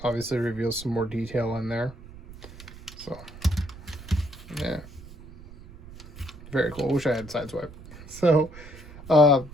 obviously reveals some more detail in there. So, yeah. Very cool. Wish I had sideswipe. So,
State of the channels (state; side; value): noise; right; rumble, 17 dB below the sound